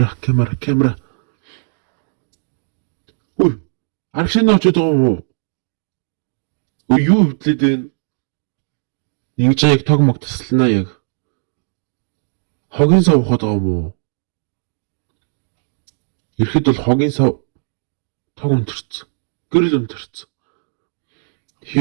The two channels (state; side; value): silent; left; digital silence